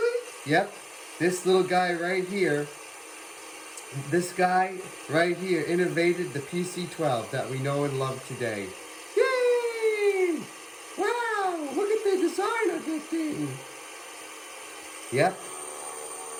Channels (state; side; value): identical; both; correlation 1.00